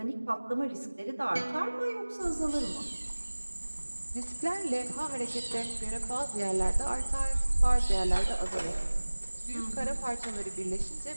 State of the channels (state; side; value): inverted; both; correlation -1.00